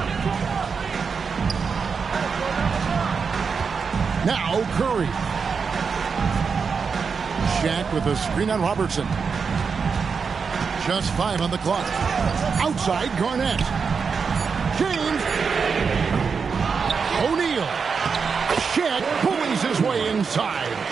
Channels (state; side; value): quieter; left; 5.6 dB